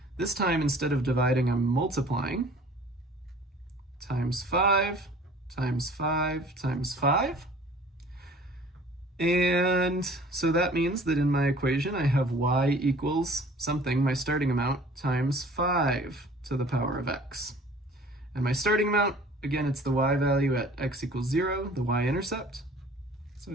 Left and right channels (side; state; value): both; normal; correlation 0.49